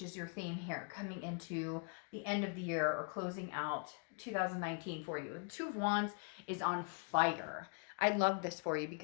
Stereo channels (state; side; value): quieter; right; 39.1 dB